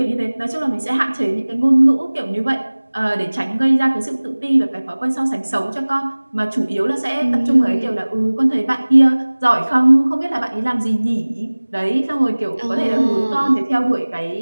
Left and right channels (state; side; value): inverted; both; correlation -1.00